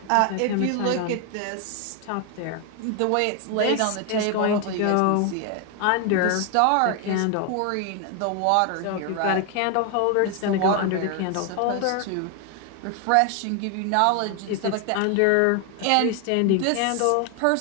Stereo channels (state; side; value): different; both; correlation 0.01